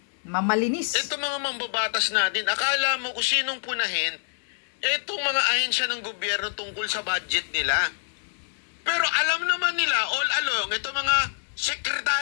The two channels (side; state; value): right; silent; digital silence